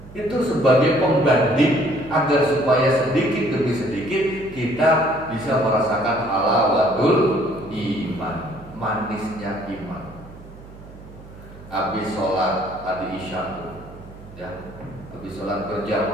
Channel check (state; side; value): noise; right; hum, 18 dB below the sound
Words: Itu sebagai pembanding agar supaya sedikit demi sedikit kita bisa merasakan halawatul iman, manisnya iman. Habis sholat tadi isya, ya, habis sholat